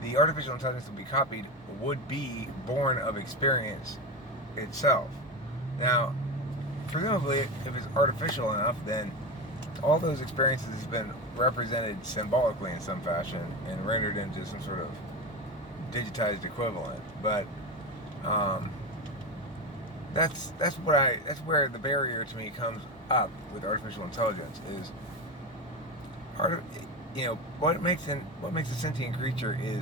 the artificial intelligence that would be copied would be born of experience itself. Now, presumably, if it's artificial enough, then all those experiences have been represented symbolically in some fashion and rendered into some sort of digitized equivalent. But that's where the barrier to me comes up with artificial intelligence is what makes a sentient creature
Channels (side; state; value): both; normal; correlation 0.19